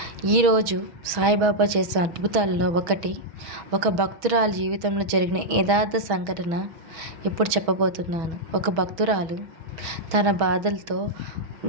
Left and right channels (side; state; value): left; late; 6.3 ms